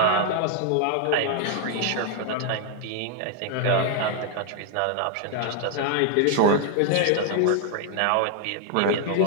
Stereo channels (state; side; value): different; both; correlation 0.00